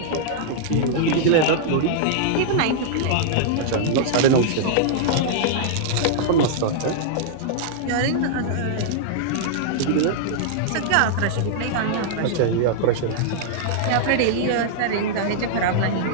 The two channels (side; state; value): both; different; correlation -0.01